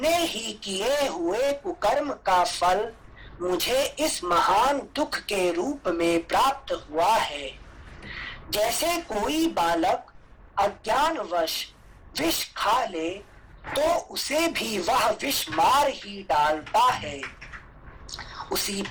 ही किए हुए कुकर्म का फल मुझे इस महान दुख के रूप में प्राप्त हुआ है। जैसे कोई बालक अज्ञानवश विष खा ले तो उसे भी वह विष मार ही डालता है, उसी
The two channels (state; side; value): identical; both; correlation 1.00